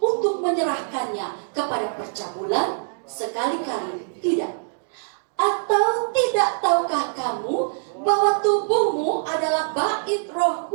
menyerahkannya kepada percabulan? Sekali-kali tidak. Atau tidak tahukah kamu bahwa tubuhmu adalah bait Roh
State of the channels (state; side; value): silent; left; digital silence